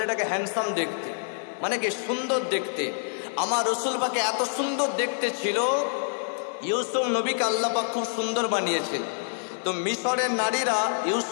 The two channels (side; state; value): right; silent; digital silence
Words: হ্যান্ডসাম দেখতে, মানে কি সুন্দর দেখতে। আমার রসুল পাকে এত সুন্দর দেখতে ছিল, ইউসুফ নবীকে আল্লাহ পাক খুব সুন্দর বানিয়েছেন। তো মিশরের নারীরা